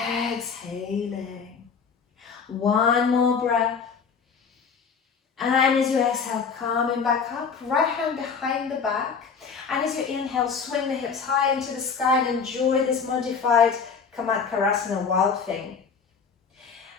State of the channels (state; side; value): quieter; right; 5.9 dB